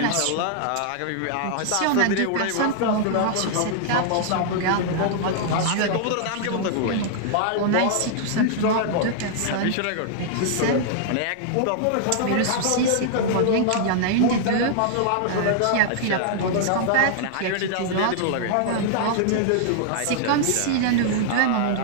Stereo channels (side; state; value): both; different; correlation -0.01